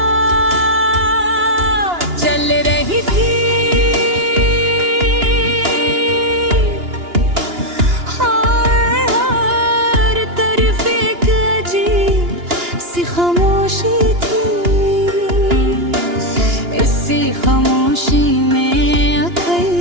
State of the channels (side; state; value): left; late; 2.9 ms